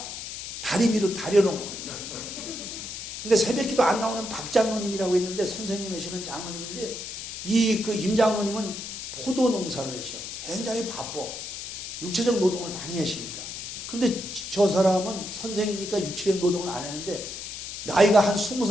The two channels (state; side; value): noise; left; hiss, 8 dB below the sound